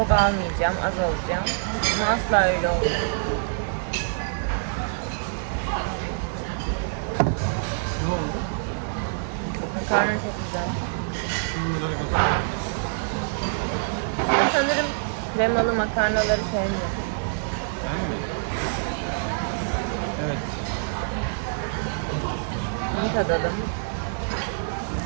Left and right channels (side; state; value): left; silent; 61 dB below the other